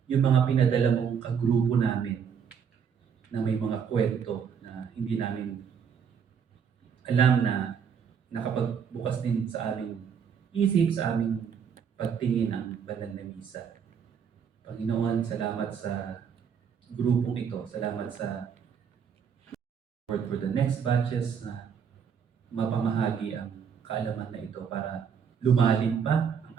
yung mga pinadala mong kagrupo namin na may mga kwento na hindi namin alam na nakapagbukas din sa aming isip, sa aming pagtingin ang banal na misa. Panginoon, salamat sa grupong ito. Salamat sa Lord for the next batches na mapamahagi ang kaalaman na ito para lumalim pa ang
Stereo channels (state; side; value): quieter; left; 7.2 dB